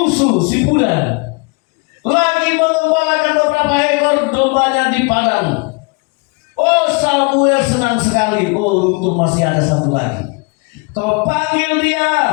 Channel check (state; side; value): quieter; right; 30.7 dB